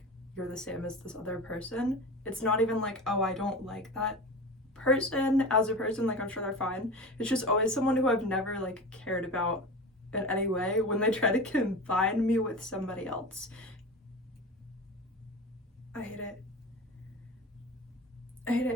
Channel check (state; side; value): normal; both; correlation 0.31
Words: you're the same as this other person? It's not even like, oh, I don't like that person as a person, like I'm sure they're fine. It's just always someone who I've never like cared about in any way when they try to combine me with somebody else. I hate it.